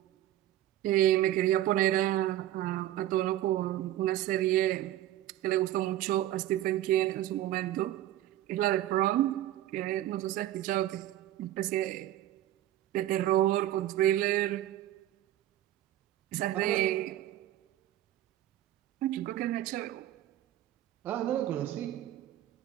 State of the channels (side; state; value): left; quieter; 13.5 dB